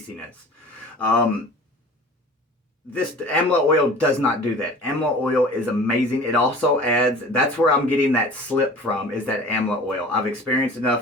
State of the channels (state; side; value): normal; both; correlation 0.42